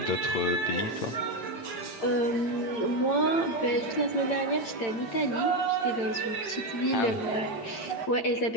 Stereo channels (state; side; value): late; right; 8.8 ms